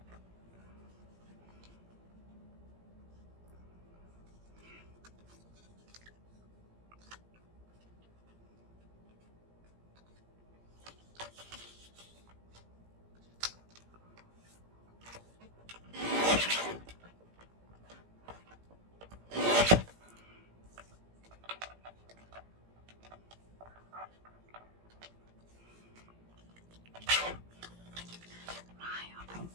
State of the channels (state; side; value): late; left; 17 ms